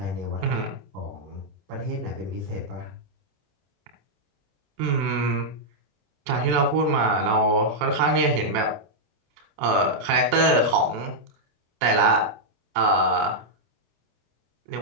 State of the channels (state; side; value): late; left; 28 ms